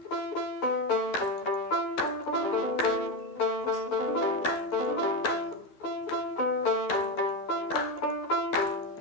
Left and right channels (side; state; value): right; late; 13 ms